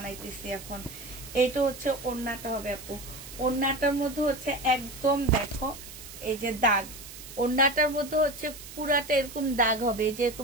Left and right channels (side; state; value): right; noise; hiss, 14 dB below the sound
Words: এখন। এটা হচ্ছে ওড়নাটা হবে আপু, ওড়নাটার মধ্যে হচ্ছে একদম দেখো এই যে দাগ, ওড়নাটার মধ্যে হচ্ছে পুরাটা এরকম দাগ হবে, যে